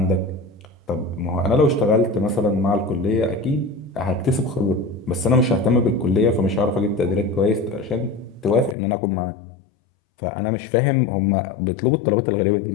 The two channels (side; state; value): right; drops out; at 8.8 s